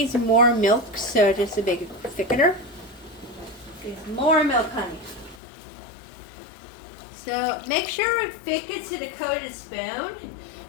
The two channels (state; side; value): drops out; right; at 5.4 s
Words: more milk, so just a big thickener. There's more milk, honey. So make sure it thickens to the coated spoon,